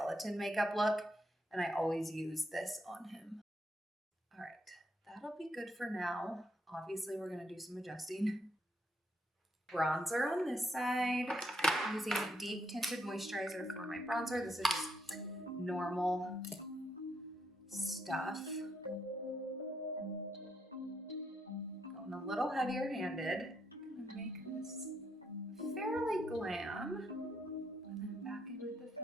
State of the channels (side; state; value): both; normal; correlation 0.76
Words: makeup look, and I always use this on him. All right, that'll be good for now. Obviously, we're gonna do some adjusting. Bronzer on this side. I'm using deep tinted moisturizer for my bronzer. This is just normal stuff. Going a little heavier handed. I'm gonna make this fairly glam. And then back in with the